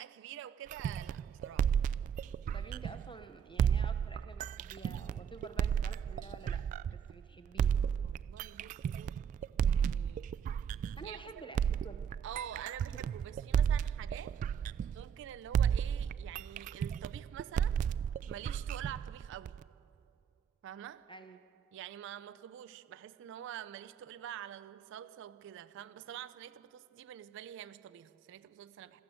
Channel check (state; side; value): quieter; left; 8.0 dB